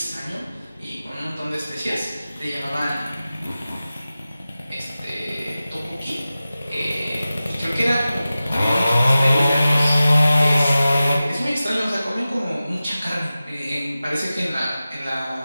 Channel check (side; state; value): both; inverted; correlation -0.95